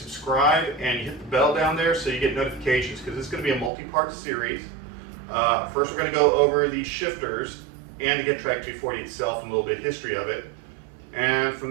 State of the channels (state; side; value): drops out; left; at 3.7 s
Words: and you hit the bell down there so you get notifications, because it's going to be a multi-part series. First we're going to go over the shifters and the Getrag 240 itself and a little bit of history of it. And